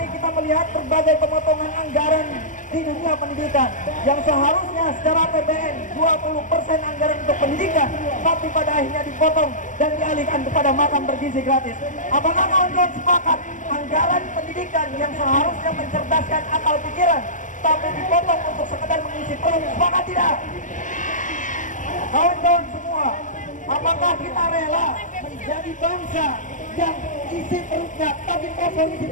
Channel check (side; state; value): right; late; 0.37 ms